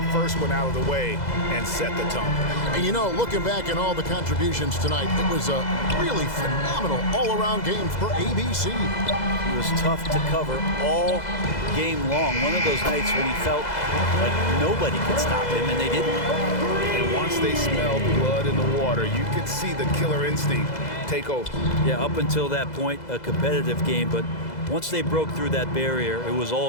first one out of the way and set the tone. And you know, looking back at all the contributions tonight, it was a really phenomenal all-around game for ABC. He was tough to cover all game long. One of those nights when he felt like nobody could stop him, and they didn't. And once they smelled blood in the water, you could see the killer instinct take over. Yeah, up until that point, a competitive game, but once they broke through that barrier, it was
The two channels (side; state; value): right; late; 2.0 ms